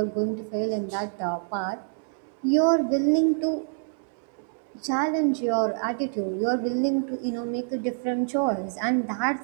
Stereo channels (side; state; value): left; silent; 60 dB below the other